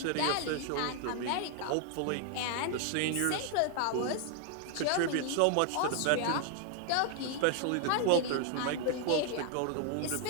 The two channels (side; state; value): both; different; correlation 0.00